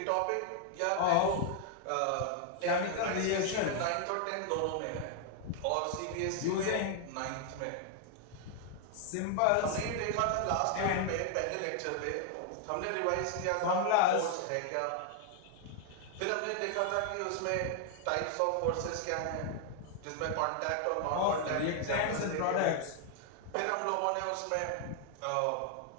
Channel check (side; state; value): both; different; correlation 0.00